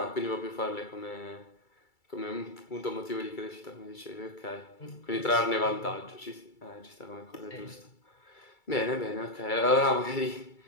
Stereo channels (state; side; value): late; right; 2.3 ms